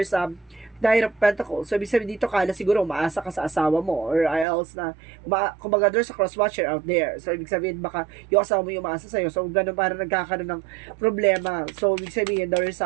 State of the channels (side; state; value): left; drops out; at 4.5 s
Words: Knight of Pentacles. So, ibig sabihin dito kala siguro umaasa ka sa asawa mo or else na kumbaga there's a cross-watcher out there. So, ibig sabihin baka yung asawa mo yung umaasa sa'yo. So, ganun parang nagkakaroon ng problema. So, ibig sabihin there is